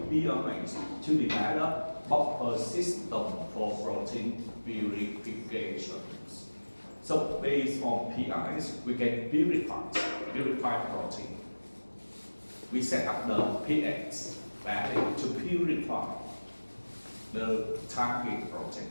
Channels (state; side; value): inverted; both; correlation -1.00